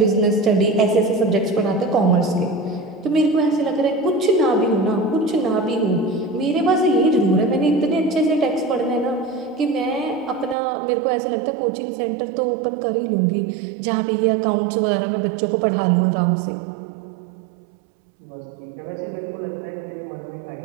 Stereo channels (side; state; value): left; drops out; at 10.6 s